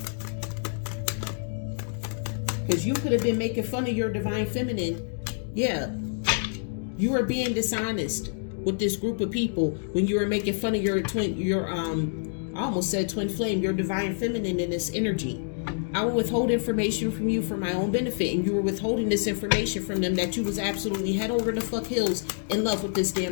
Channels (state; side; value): silent; right; digital silence